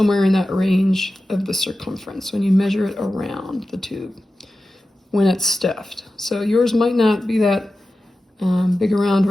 in that range of the circumference when you measure it around the tube when it's stuffed. So yours might not be that big around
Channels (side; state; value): both; normal; correlation 0.94